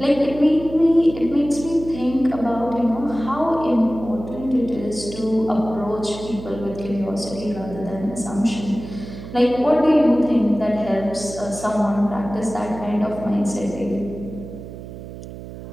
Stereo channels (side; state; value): right; noise; hum, 12 dB below the sound